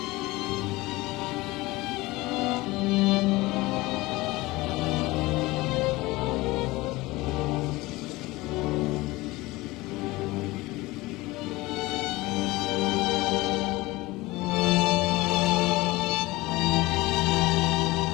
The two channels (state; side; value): quieter; right; 20.7 dB